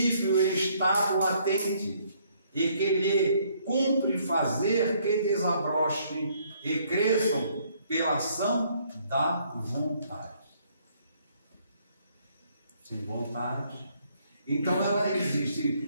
em estado latente, e que lhe cumpre fazer que desabrochem e cresçam pela ação da vontade. Sem vontade. Então ela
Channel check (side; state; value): both; inverted; correlation -0.67